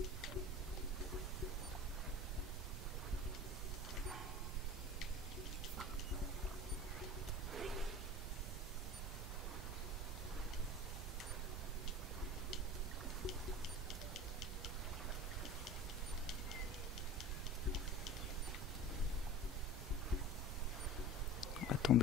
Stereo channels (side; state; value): both; normal; correlation 0.37